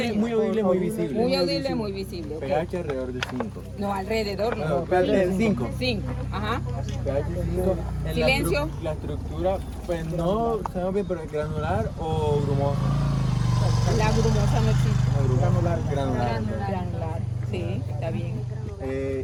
muy audible, muy visible. Muy audible, muy visible. Okay. pH alrededor de 5. No, alrededor no. pH de 5. 5. Ajá. pH 5. Silencio. La estructura, pues no sabemos bien, pero es granular o grumosa. La grumosa no existe. Granular. Sí, está bien.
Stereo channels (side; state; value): both; identical; correlation 1.00